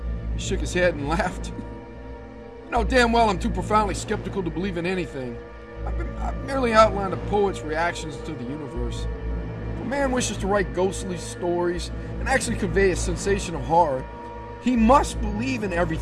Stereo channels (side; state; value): both; identical; correlation 1.00